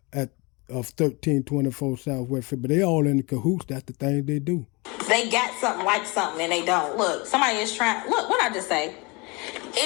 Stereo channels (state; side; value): quieter; right; 27.3 dB